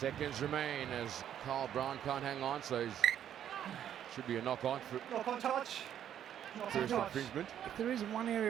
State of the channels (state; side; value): quieter; left; 10.1 dB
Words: remain as Carl Brown can't hang on, so it should be a knock-on for touch. first infringement. If there is one area